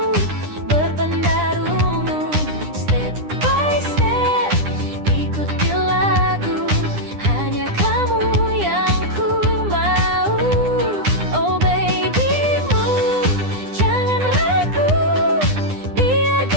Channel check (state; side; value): late; left; 9.9 ms